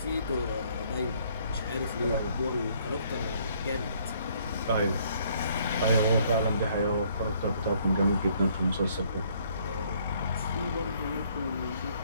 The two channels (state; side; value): inverted; both; correlation -0.64